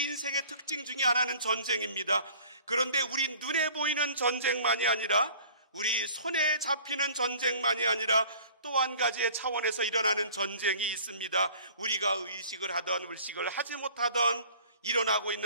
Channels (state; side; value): inverted; both; correlation -0.49